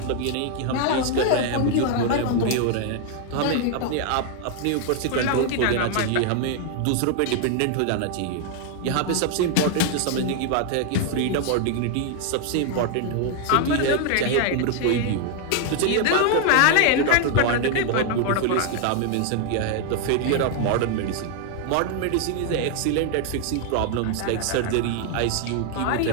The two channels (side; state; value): both; different; correlation 0.00